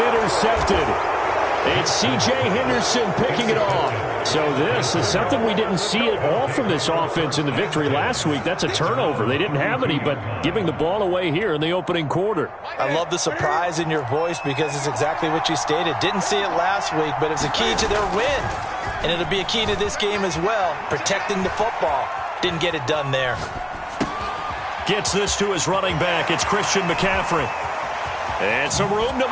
intercepted. It's C.J. Henderson picking it off. So this is something we didn't see at all from this offense in the victory last week. That's a turnover. They didn't have any, but giving the ball away here in the opening quarter. I love the surprise in your voice because it's exactly what you stated. Didn't see it last week, but it's a key to their win. And it'll be a key to this game as well, protecting the football. Didn't get it done there. Gets this to his running back. It's Christian McCaffrey. And some room to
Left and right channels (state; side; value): identical; both; correlation 1.00